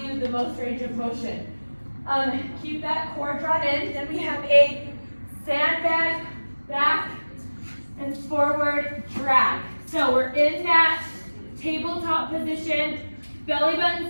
you the most range of motion. Keep that core drawn in. Then we have a sandbag back and forward drag. So we're in that tabletop position, belly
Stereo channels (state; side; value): inverted; both; correlation -1.00